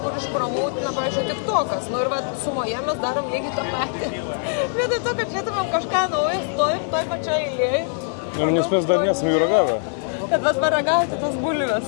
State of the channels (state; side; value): silent; right; 64 dB below the other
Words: kur išpramautina, pavyzdžiui, TikTokas. Nu ir sumoje mes darom lygiai tą patį. Vietoj to, kad žiūrėtumėm kažką naujo, stovim toj pačioj eilėje. Nes mes dar nesame ragavę. Bet paragauti tas bulves.